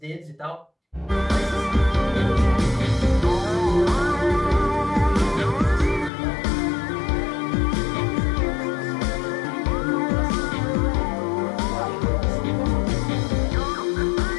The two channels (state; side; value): drops out; right; at 6.1 s